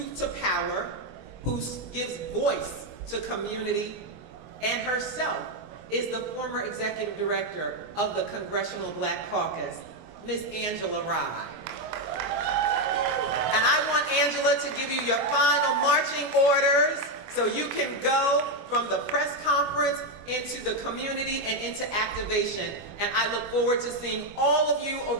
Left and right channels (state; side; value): late; left; 24 ms